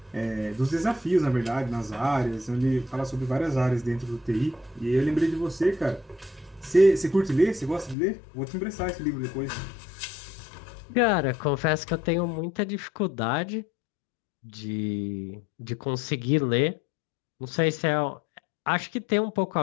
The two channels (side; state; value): right; drops out; at 8.0 s